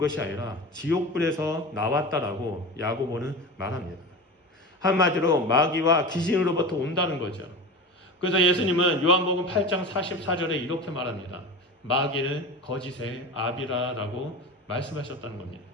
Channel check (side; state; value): both; normal; correlation 0.29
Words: 아니라 지옥불에서 나왔다라고 야고보는 말합니다. 한마디로 마귀와 귀신으로부터 온다는 거죠. 그래서 예수님은 요한복음 8장 44절에 이렇게 말합니다. 마귀는 거짓의 아비라라고 말씀하셨다는 겁니다.